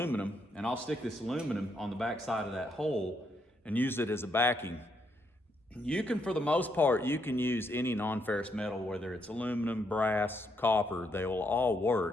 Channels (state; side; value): normal; both; correlation 0.76